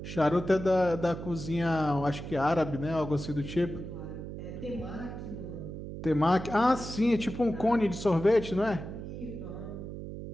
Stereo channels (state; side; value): noise; right; hum, 9 dB below the sound